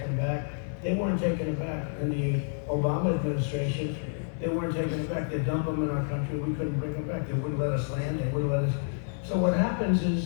back. They weren't taking them back. In the Obama administration, they weren't taking them back. They dumped them in our country. We couldn't bring them back. They wouldn't let us land. They wouldn't let us. So what happens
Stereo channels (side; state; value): right; silent; 59 dB below the other